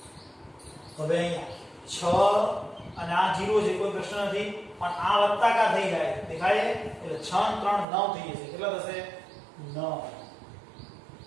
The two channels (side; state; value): left; drops out; at 7.9 s